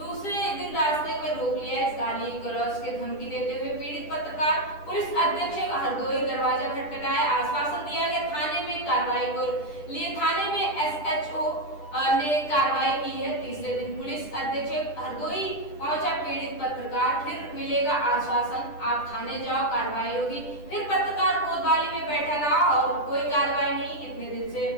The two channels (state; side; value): late; right; 10 ms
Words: दिन रास्ते में रोक लिया। इस गाली गलौज के धमकी देते हुए पीड़ित पत्रकार पुलिस अधीक्षक हरदोई दरवाजा खटखटाया। आश्वासन दिया गया थाने में कार्रवाई को लिए। थाने में SHO ने कार्रवाई की है। तीसरे दिन पुलिस अधीक्षक हरदोई पहुंचा। पीड़ित पत्रकार फिर मिलेगा आश्वासन, आप थाने जाओ, कार्रवाई होगी। फिर पत्रकार कोतवाली में बैठा रहा और कोई कार्रवाई नहीं। इतने दिन से